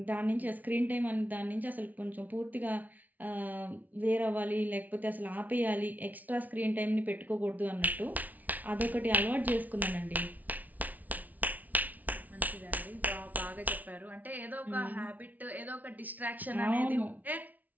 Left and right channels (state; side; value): late; left; 0.075 ms